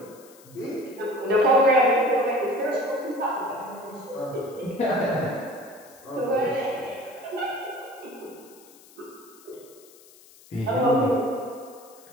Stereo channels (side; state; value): left; noise; hiss, 24 dB below the sound